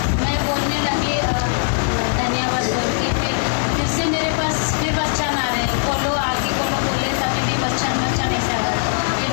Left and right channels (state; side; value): silent; right; digital silence